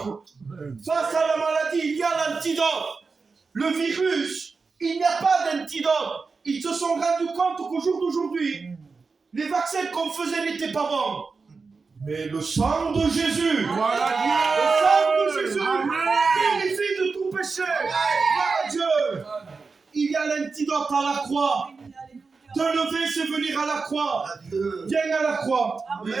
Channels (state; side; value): quieter; left; 4.5 dB